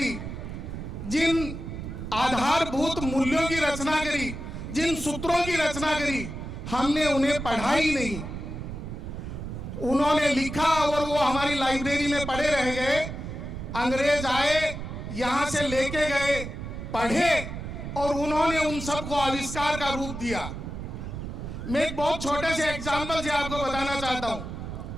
जिन आधारभूत मूल्यों की रचना करी, जिन सूत्रों की रचना करी, हमने उन्हें पढ़ा ही नहीं। उन्होंने लिखा और वो हमारी लाइब्रेरी में पढ़े रह गए। अंग्रेज आए, यहाँ से लेके गए, पढ़े और उन्होंने उन सबको आविष्कार का रूप दिया। मैं एक बहुत छोटे से एग्जाम्पल से आपको बताना चाहता हूं।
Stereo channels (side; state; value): right; noise; rumble, 7 dB below the sound